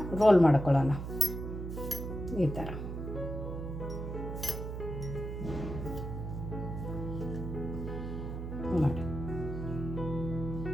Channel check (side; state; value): right; noise; hum, 6 dB below the sound